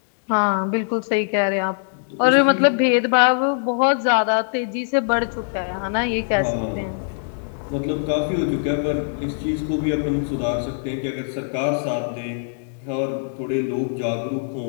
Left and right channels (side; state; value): right; silent; digital silence